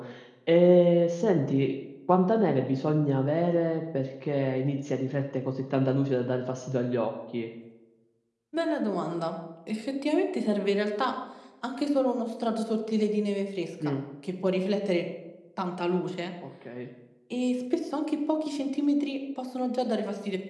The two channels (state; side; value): identical; both; correlation 1.00